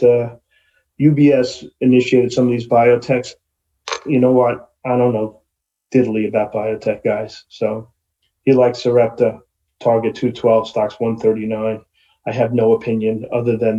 UBS initiated some of these biotechs. You know what? I don't know diddly about biotech guys. So he likes Sarepta, target 212, stocks 139. I have no opinion other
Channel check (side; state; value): both; identical; correlation 1.00